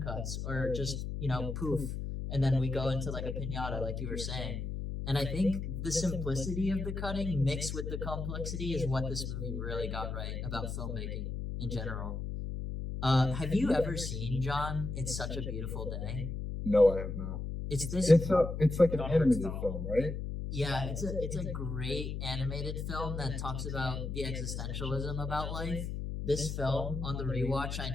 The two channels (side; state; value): left; noise; hum, 4 dB below the sound